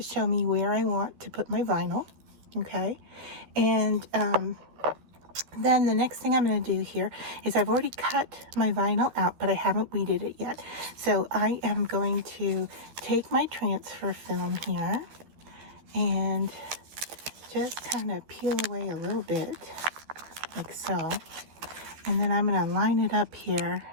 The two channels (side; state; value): left; late; 13 ms